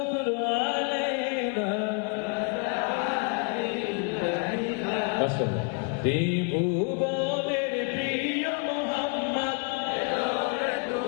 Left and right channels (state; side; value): quieter; right; 37.6 dB